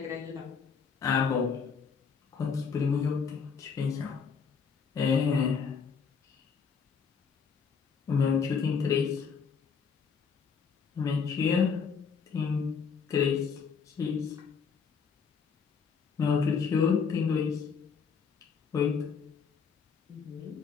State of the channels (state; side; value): quieter; right; 6.0 dB